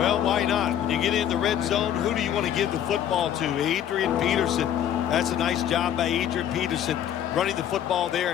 why not? When you get in the red zone, who do you want to give the football to? Adrian Peterson. That's a nice job by Adrian Peterson, running the football there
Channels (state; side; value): quieter; right; 10.3 dB